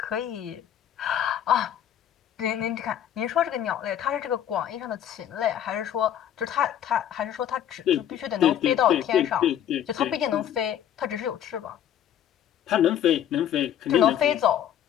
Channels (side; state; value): right; quieter; 10.2 dB